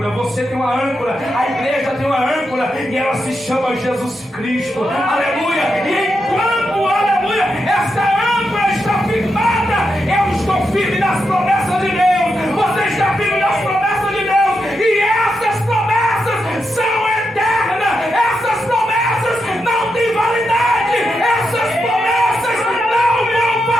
você tem uma âncora, a igreja tem uma âncora, e ela se chama Jesus Cristo. Aleluia! E enquanto, aleluia, essa âncora está firmada, eu estou firme nas promessas de Deus. Você está firme nas promessas de Deus, e essas promessas são eternas. Essas promessas não têm validade. Essas promessas não vão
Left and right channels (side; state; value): both; normal; correlation 0.85